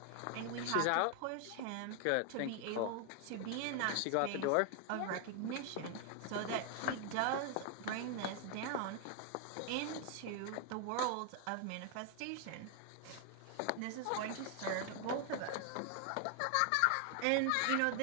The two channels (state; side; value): different; both; correlation 0.00